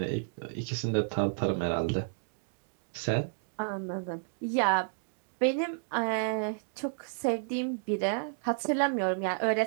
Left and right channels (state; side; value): silent; left; digital silence